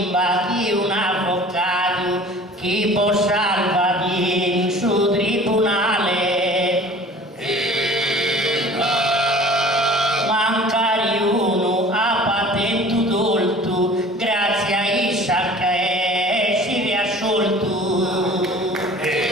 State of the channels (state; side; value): normal; both; correlation 0.45